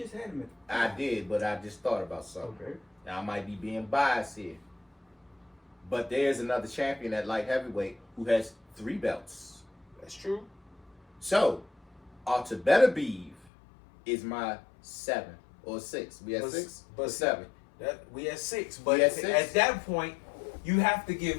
had him at I did, but I just thought about something. Okay. Now I might be being biased here, but there's another champion at light heavyweight who has 3 belts. That's true. So, Beterbiev is my 7 or 6. We had 6, but 7. We had 6, but at that point, you have to give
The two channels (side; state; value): right; drops out; at 13.5 s